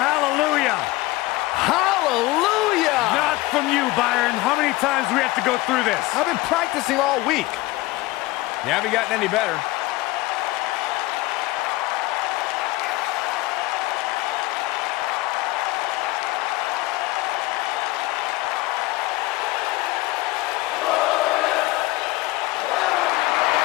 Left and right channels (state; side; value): quieter; right; 19.8 dB